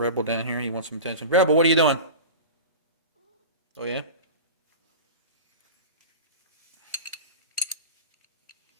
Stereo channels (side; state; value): both; inverted; correlation -0.31